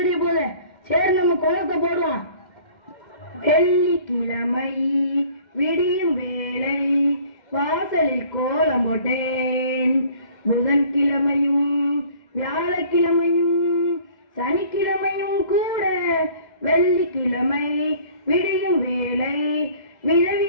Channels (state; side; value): late; right; 2.1 ms